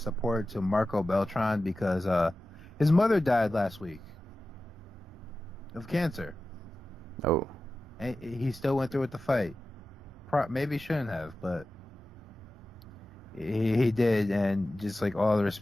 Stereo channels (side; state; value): both; normal; correlation 0.94